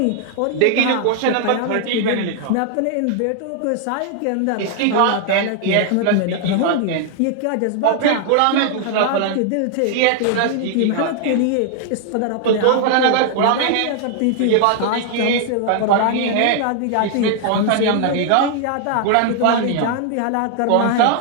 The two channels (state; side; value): different; both; correlation 0.00